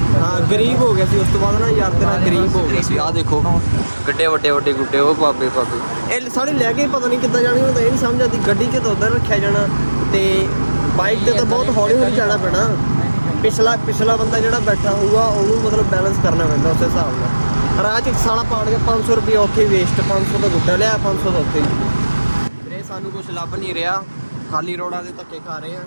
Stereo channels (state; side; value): inverted; both; correlation -1.00